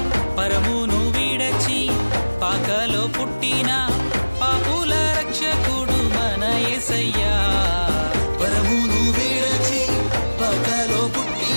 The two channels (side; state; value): both; inverted; correlation -1.00